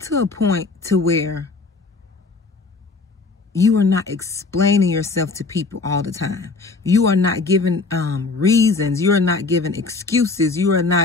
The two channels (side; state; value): right; quieter; 3.9 dB